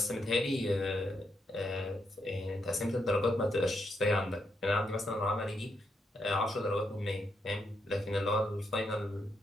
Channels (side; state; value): both; normal; correlation 0.80